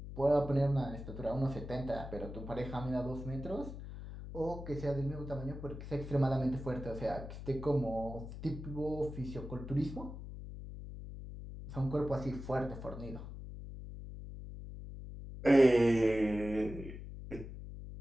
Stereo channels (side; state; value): left; noise; hum, 10 dB below the sound